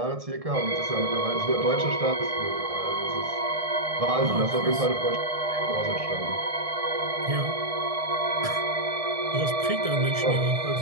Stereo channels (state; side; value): late; left; 1.6 ms